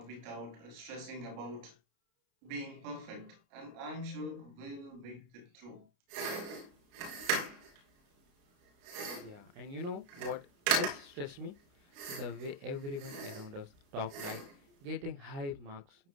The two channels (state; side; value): late; left; 29 ms